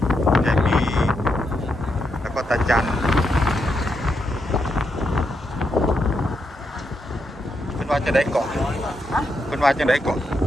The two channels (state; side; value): normal; both; correlation 0.82